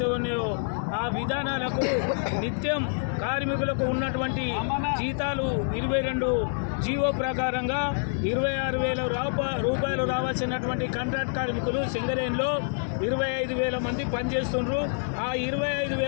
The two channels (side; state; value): right; silent; 60 dB below the other